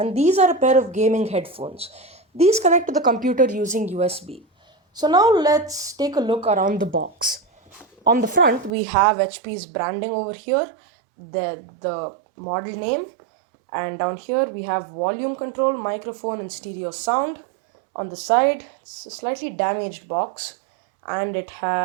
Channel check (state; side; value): drops out; left; at 8.7 s